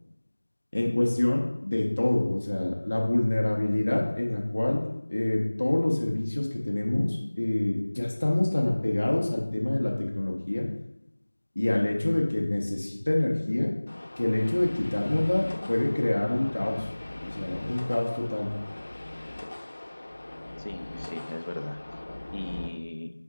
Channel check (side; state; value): both; inverted; correlation -1.00